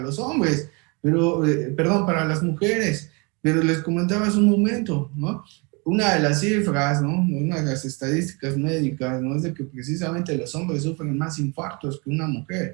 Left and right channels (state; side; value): quieter; left; 30.5 dB